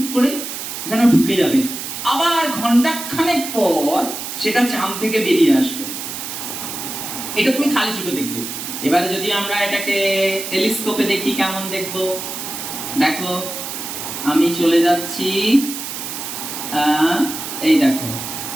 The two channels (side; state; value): right; noise; hiss, 7 dB below the sound